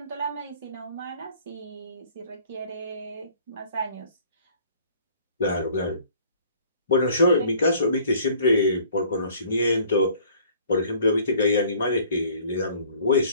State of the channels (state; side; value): inverted; both; correlation -0.54